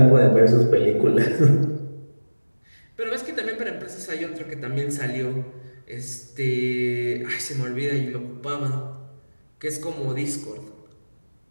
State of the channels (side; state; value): both; inverted; correlation -1.00